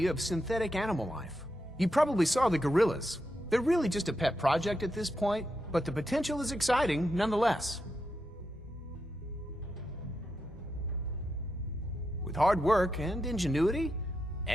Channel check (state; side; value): normal; both; correlation 0.85